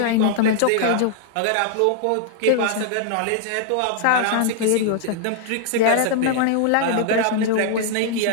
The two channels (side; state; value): both; different; correlation 0.00